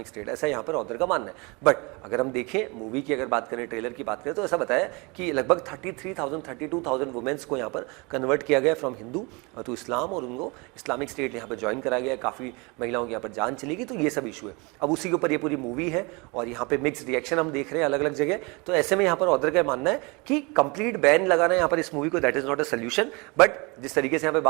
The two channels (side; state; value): left; quieter; 28.2 dB